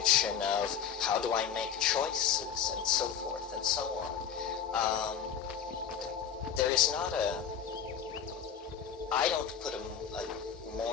of how do I make choices, and so forth and so on. There is not I don't put a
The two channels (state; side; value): quieter; right; 8.0 dB